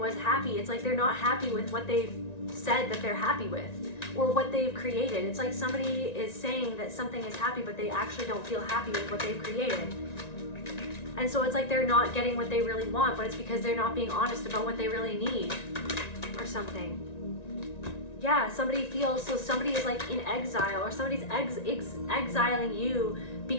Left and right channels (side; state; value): right; late; 1.9 ms